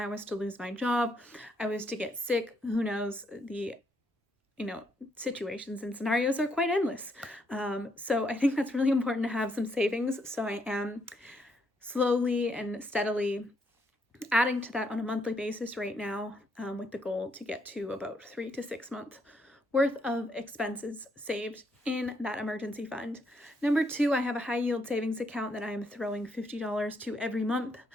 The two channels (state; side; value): normal; both; correlation 0.75